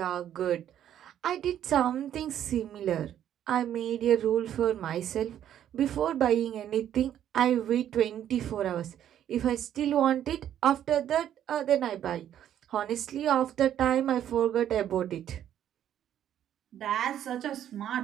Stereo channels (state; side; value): quieter; left; 10.6 dB